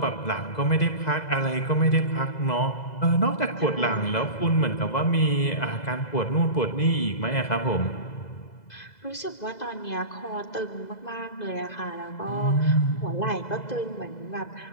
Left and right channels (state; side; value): late; right; 2.0 ms